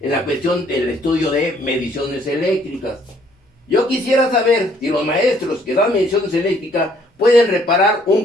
la cuestión del estudio de mediciones eléctricas. Yo quisiera saber si los maestros que dan mediciones eléctricas pueden reparar un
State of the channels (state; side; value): normal; both; correlation 0.63